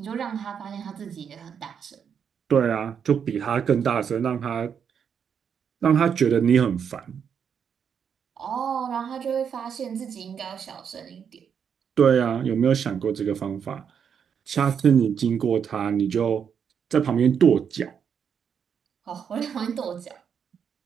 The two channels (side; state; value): left; quieter; 7.4 dB